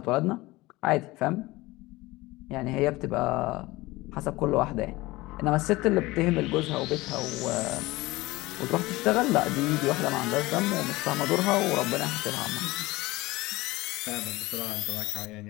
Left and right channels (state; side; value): quieter; right; 20.4 dB